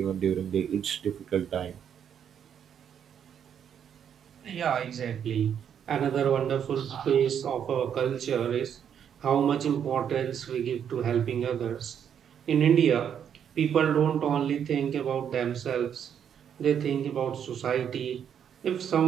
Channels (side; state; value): left; quieter; 8.5 dB